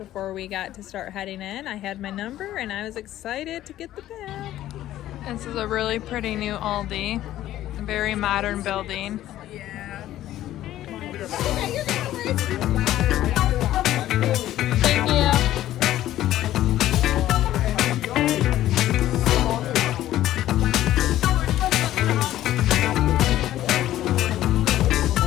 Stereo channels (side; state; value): right; quieter; 13.6 dB